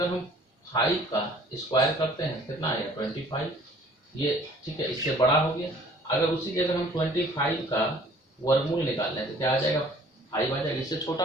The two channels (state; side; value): normal; both; correlation 0.54